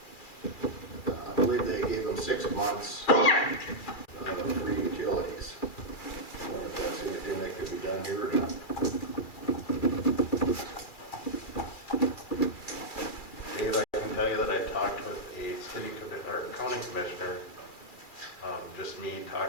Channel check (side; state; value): right; late; 2.3 ms